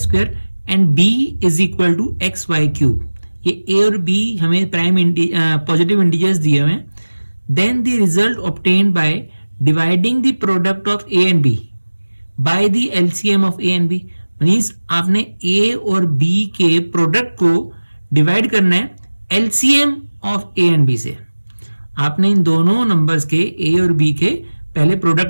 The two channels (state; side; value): inverted; both; correlation -1.00